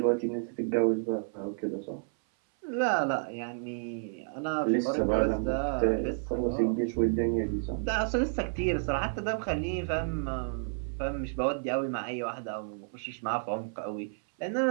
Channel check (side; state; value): left; silent; 57 dB below the other